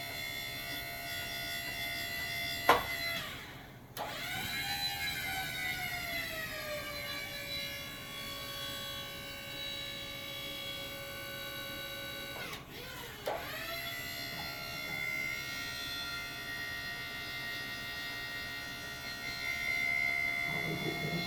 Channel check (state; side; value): identical; both; correlation 1.00